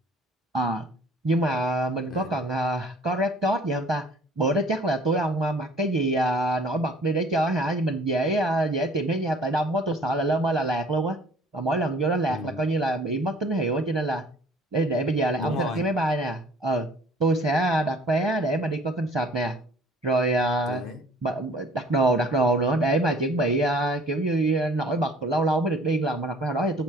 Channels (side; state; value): both; normal; correlation 0.53